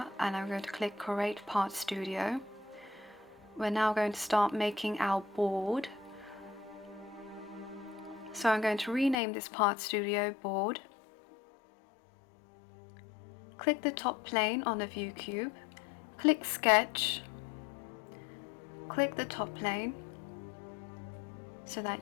and I'm going to click Create Part Studio. We're now going to start making our board. So I'm going to rename this Part Studio Board. Click the top plane on the view cube. Click Sketch. Click the top plane so that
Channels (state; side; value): drops out; right; at 9.2 s